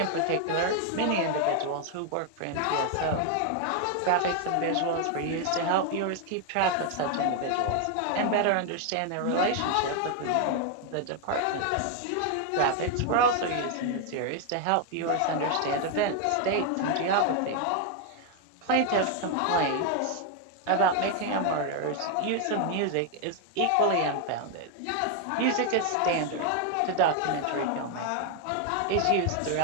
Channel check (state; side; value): different; both; correlation 0.00